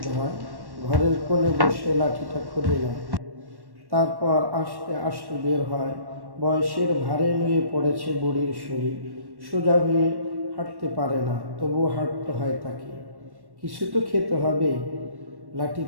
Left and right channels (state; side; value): late; left; 1.1 ms